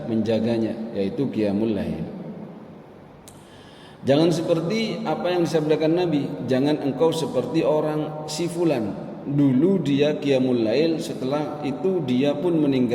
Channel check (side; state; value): both; identical; correlation 1.00